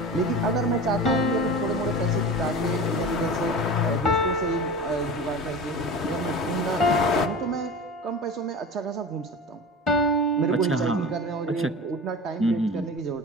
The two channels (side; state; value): both; normal; correlation 0.33